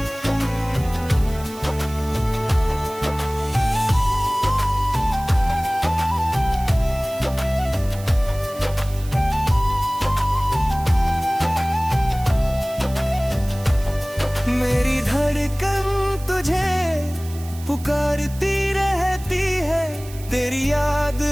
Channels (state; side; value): noise; right; hiss, 18 dB below the sound